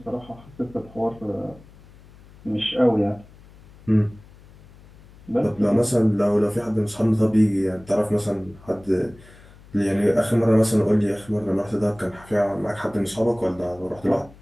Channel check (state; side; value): noise; left; hum, 23 dB below the sound